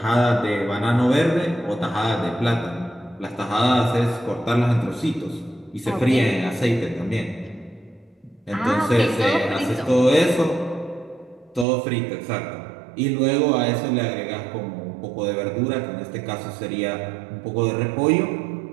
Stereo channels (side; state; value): left; drops out; at 11.7 s